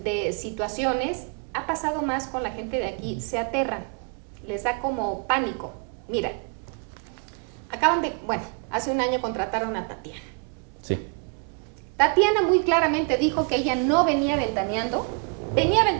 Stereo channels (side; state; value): left; quieter; 38.1 dB